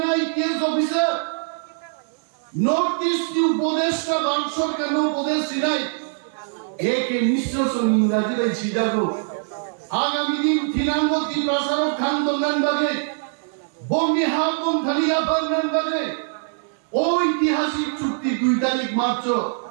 आईपीएस ऑफिसर नॉर्थ ईस्ट की उपदेष्टा भारत सरकार नो उपदेश सिनाई एक मिश्र सुन इंग्रजी भाई सीधा को आगामी दिन थिनांगो ত্রিপ্রাসারক থান দঙ্গান বাগে বঙ্গি হাবম থালিয়া পারনান বাগে ঐতিহাসিক চুক্তি 2 তারিখ মার্চ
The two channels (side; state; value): left; silent; digital silence